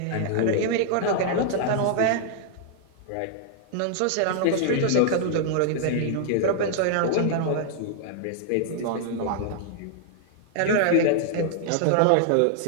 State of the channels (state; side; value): different; both; correlation -0.01